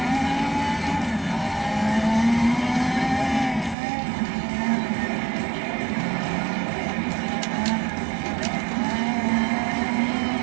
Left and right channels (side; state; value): left; drops out; at 3.8 s